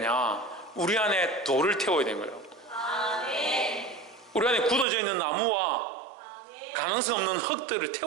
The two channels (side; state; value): left; drops out; at 4.9 s